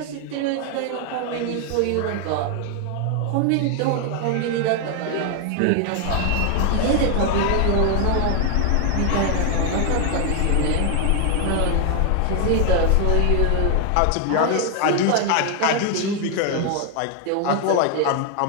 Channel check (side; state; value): both; different; correlation 0.00